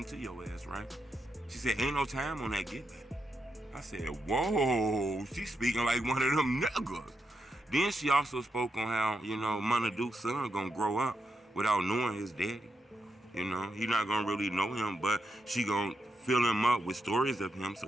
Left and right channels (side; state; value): both; normal; correlation 0.84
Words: to your ass, right? She said, ain't no time on that Get Back. I said, whoa, she's speaking like one of them niggas. Then she also spoke on how, Munna Duke's son gonna grow up without knowing his daddy. He not gonna really know him, but she gonna fill him up with stories of him so